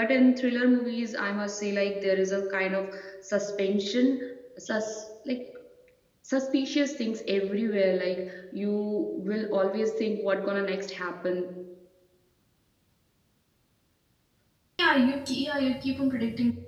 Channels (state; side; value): identical; both; correlation 1.00